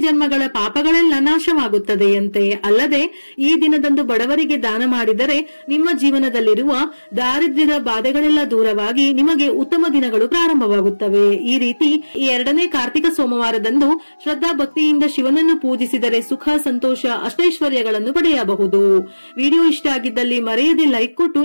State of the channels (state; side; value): inverted; both; correlation -1.00